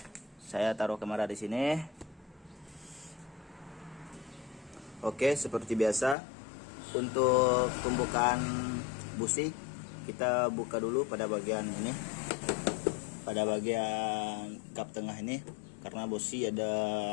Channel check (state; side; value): drops out; right; at 6.2 s